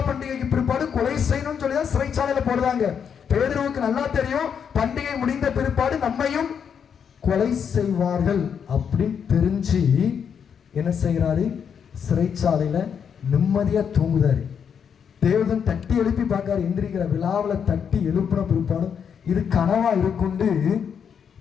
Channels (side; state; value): right; quieter; 7.4 dB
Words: பண்டிகைக்கு பிற்பாடு கொலை செய்யணும்னு சொல்லிதான் சிறைச்சாலையில போடுறாங்க. பேதுருவுக்கு நல்லா தெரியும், பண்டிகை முடிந்த பிற்பாடு நம்மையும் கொலை செய்வார்கள் அப்படின்னு தெரிஞ்சு என்ன செய்யறாரு? சிறைச்சாலையில நிம்மதியா தூங்குதாரு. தேவதன் தட்டி எழுப்பி பார்க்காரு, எந்திரிக்கிற விழாவில் தட்டி எழுப்பின பிற்பாடு இது கனவா இருக்குண்டு